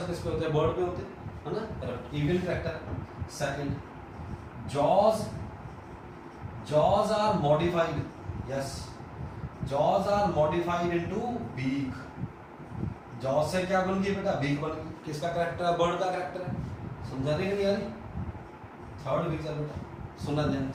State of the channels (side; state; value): both; identical; correlation 1.00